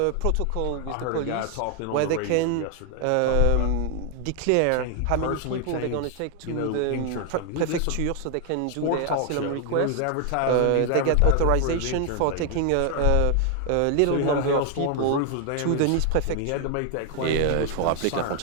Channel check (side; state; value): both; different; correlation 0.00